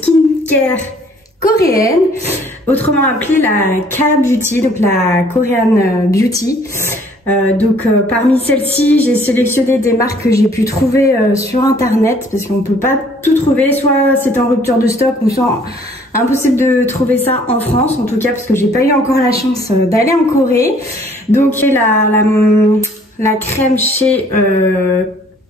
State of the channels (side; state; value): both; normal; correlation 0.59